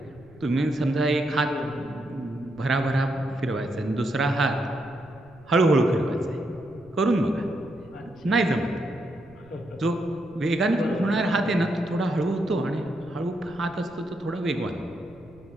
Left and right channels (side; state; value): right; noise; rumble, 24 dB below the sound